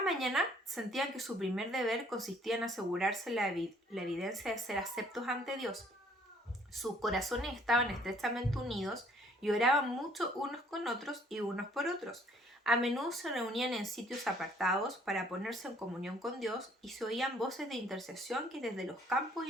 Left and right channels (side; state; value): both; normal; correlation 0.61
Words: mañana sentían que su primer deber consistía en asegurarse la evidencia de ser aceptos ante Dios. Sus corazones estaban estrechamente unidos y oraban mucho unos con otros y unos por otros. A menudo se reunían en sitios apartados para ponerse en comunión con Dios y se oían voces de intercesión que desde los campos